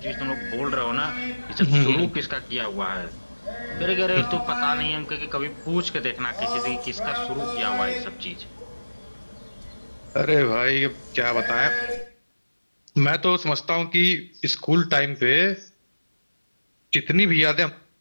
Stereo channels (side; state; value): both; inverted; correlation -1.00